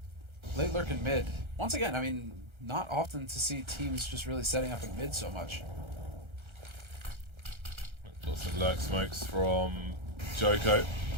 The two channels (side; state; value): left; late; 1.3 ms